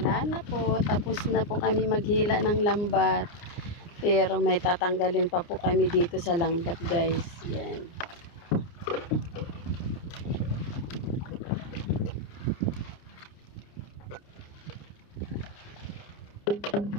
na po. Tapos na po kami maghila ng lambat. Pero may tatanggalin pa po kami dito sa lambat, guys. Yan.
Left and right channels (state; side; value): late; right; 29 ms